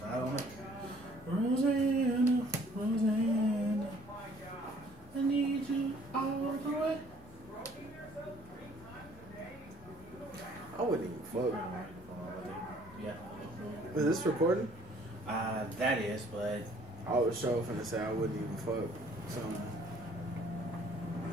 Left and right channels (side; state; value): both; normal; correlation 0.58